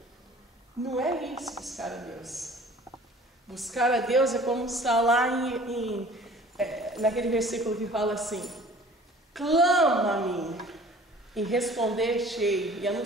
Não é isso, buscar a Deus. Buscar a Deus é como está lá naquele versículo que fala assim: clama a mim e responder-te-ei e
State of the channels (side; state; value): both; normal; correlation 0.49